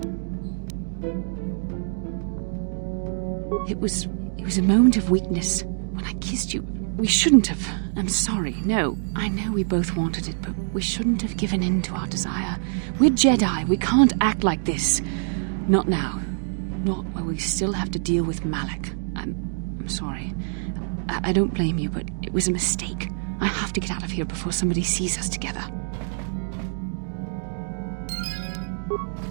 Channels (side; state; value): left; silent; 62 dB below the other